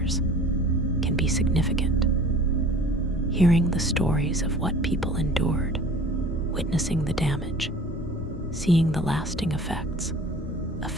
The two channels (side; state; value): both; normal; correlation 0.45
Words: can be significant. Hearing the stories of what people endured, witnessing the damage, seeing the lasting effects,